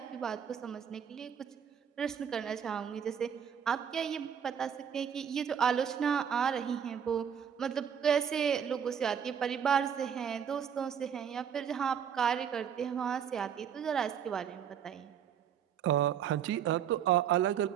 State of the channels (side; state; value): left; quieter; 8.2 dB